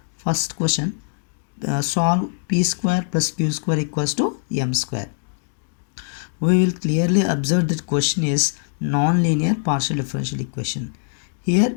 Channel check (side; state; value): right; silent; digital silence